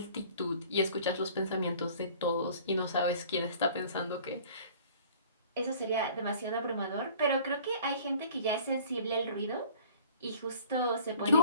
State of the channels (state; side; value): inverted; both; correlation -0.50